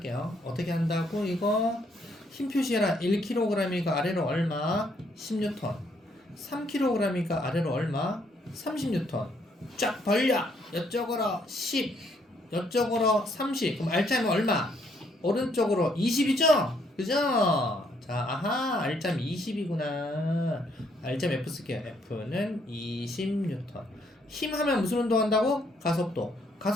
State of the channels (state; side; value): normal; both; correlation 0.70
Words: 어떻게 한다고? 이거 힘 표시해라. 1kg이니까 아래로 얼마? 10N. 3kg이니까 아래로 얼마? 30N. 쫙 벌려. 이쪽으로 10, 이쪽으로 30. 그럼 알짜면 얼마? 오른쪽으로 20이죠? 그죠? 자, 아하, 알짬 20이구나. 알짬 F 쓸게요. F는 20N. 힘 하면 무슨 운동한다고? 가속도.